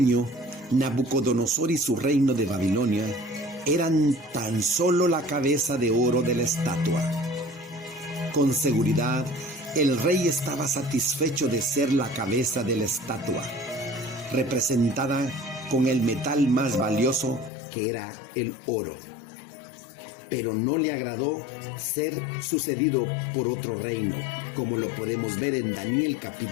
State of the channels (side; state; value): right; drops out; at 17.5 s